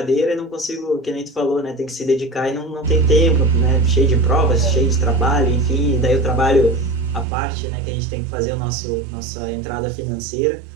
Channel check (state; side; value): drops out; left; at 7.2 s